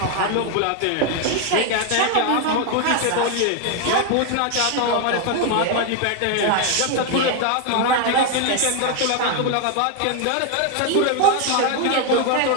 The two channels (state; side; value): different; both; correlation 0.01